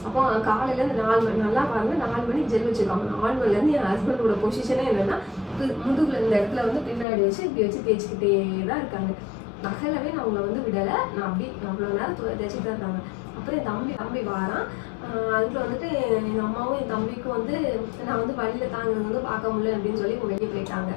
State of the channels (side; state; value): right; drops out; at 7.1 s